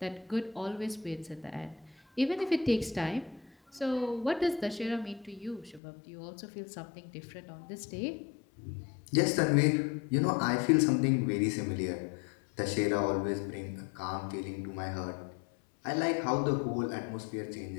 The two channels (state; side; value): drops out; right; at 5.8 s